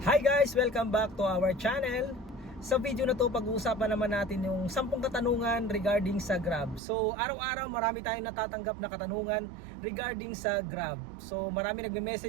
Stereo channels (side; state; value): left; drops out; at 6.8 s